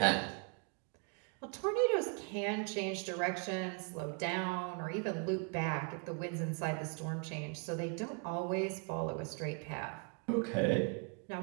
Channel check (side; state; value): left; quieter; 35.2 dB